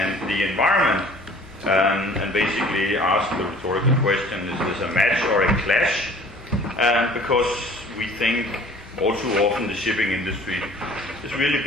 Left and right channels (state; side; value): noise; left; hum, 22 dB below the sound